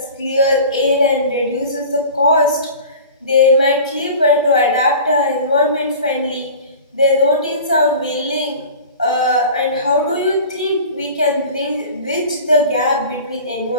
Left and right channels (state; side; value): inverted; both; correlation -0.39